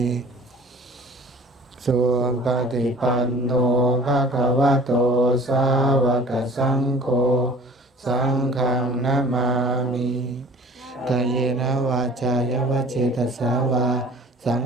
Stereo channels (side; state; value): both; normal; correlation 0.46